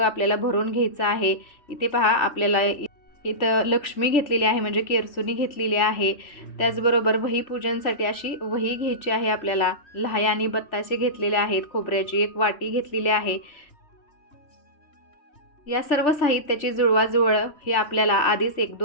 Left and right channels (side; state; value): right; late; 3.4 ms